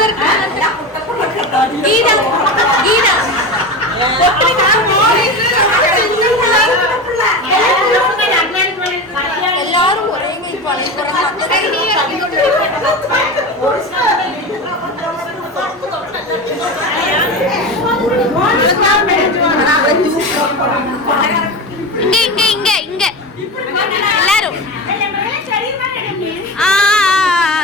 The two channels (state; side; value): normal; both; correlation 0.25